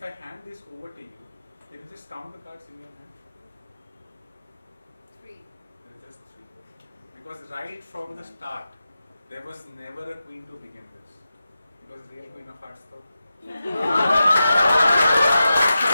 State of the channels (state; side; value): inverted; both; correlation -0.91